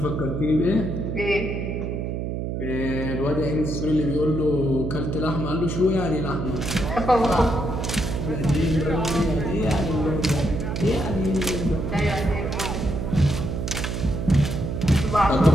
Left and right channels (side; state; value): right; noise; hum, 3 dB below the sound